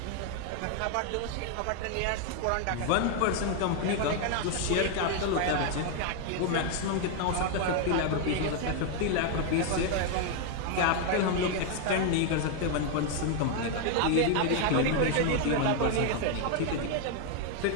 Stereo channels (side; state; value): both; different; correlation 0.01